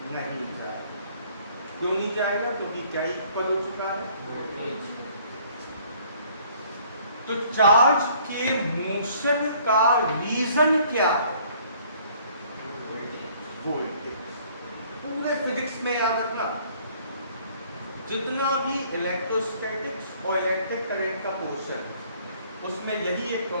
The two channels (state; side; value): inverted; both; correlation -0.59